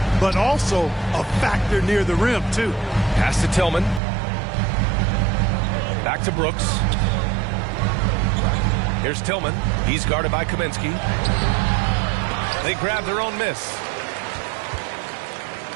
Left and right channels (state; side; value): drops out; left; at 4.0 s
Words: but also a factor near the rim, too. Pass to Tillman. Back to Brooks. Here's Tillman. He's guarded by Kaminsky. They grab their own miss.